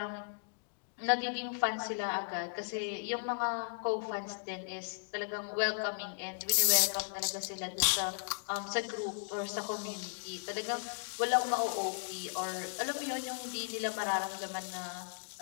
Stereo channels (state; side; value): silent; right; digital silence